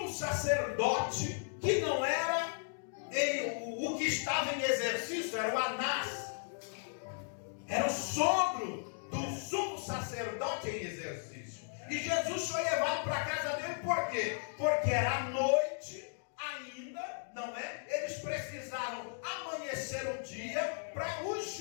sacerdote, que não era o que estava em exercício, era o Anás. Era o sogro do sumo sacerdote em exercício. E Jesus foi levado para a casa dele, por quê? Porque era noite ainda, não é? Eles precisaram amanhecer o dia para os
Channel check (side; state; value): right; silent; digital silence